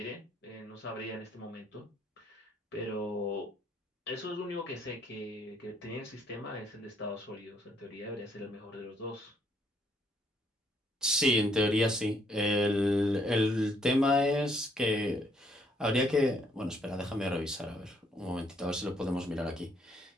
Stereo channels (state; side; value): normal; both; correlation 0.69